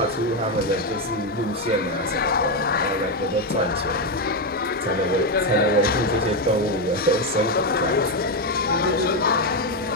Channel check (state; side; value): normal; both; correlation 0.06